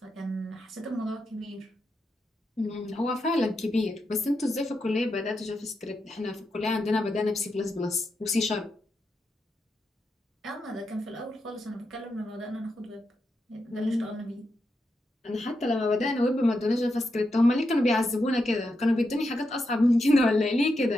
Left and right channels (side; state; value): both; normal; correlation 0.85